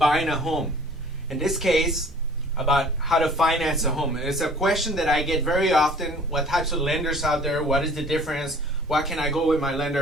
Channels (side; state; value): both; normal; correlation 0.50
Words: a home. In this case, about how to finance a home. It's a question that I get very often. What types of lenders out there? What is the difference? Why can I go with my